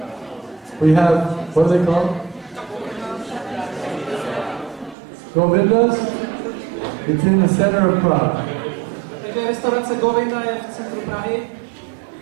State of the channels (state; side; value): drops out; left; at 5.0 s